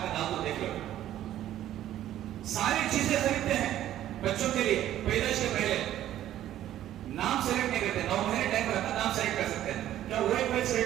کا نام تو دیکھ لو. ساری چیزیں خریدتے ہیں بچوں کے لیے پیدائش کے پہلے. نام سلیکٹ نہیں کرتے, 9 مہینے ٹائم رہتا نام سلیکٹ کر سکتے ہیں. کیا وہ ایک بچہ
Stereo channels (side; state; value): left; quieter; 12.4 dB